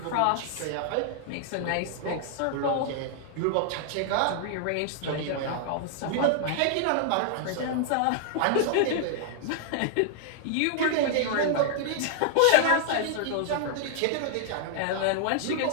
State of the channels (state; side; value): different; both; correlation -0.01